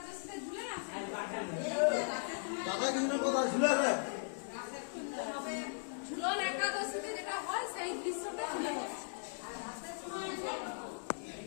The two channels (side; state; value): right; silent; digital silence